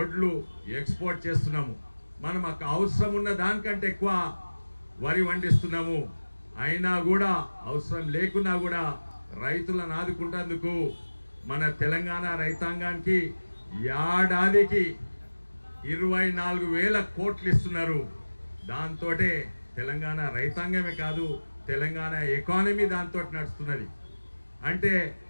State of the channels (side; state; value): both; inverted; correlation -1.00